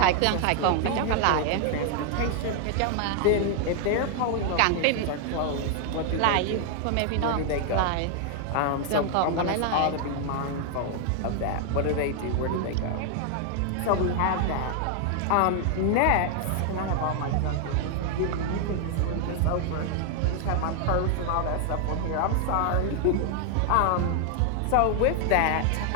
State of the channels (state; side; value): different; both; correlation 0.00